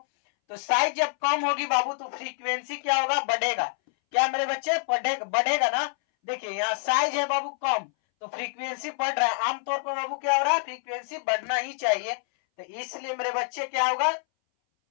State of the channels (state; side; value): silent; right; 60 dB below the other